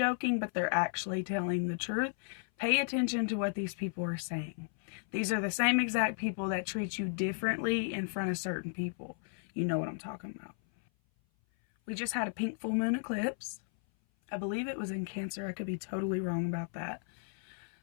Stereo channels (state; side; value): silent; right; 55 dB below the other